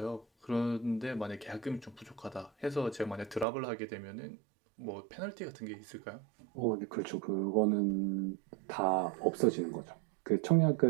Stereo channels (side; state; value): left; drops out; at 3.5 s